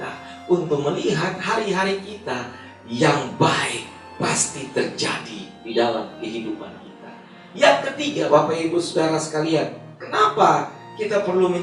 untuk melihat hari-hari kita yang baik pasti terjadi di dalam kehidupan kita. Yang ketiga, Bapak Ibu Saudara sekalian, kenapa kita perlu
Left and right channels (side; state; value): both; identical; correlation 1.00